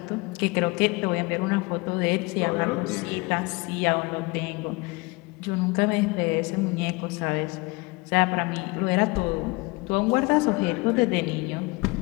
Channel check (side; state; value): right; quieter; 25.7 dB